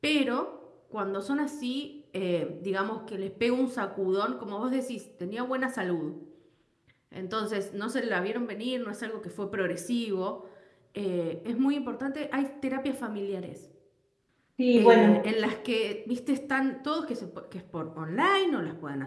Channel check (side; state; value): both; identical; correlation 1.00